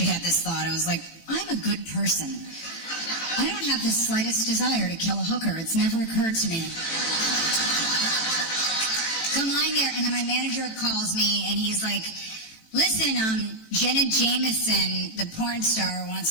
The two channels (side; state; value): right; late; 18 ms